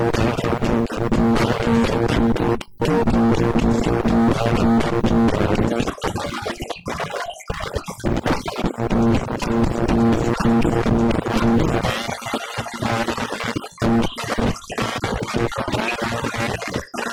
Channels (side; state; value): both; identical; correlation 1.00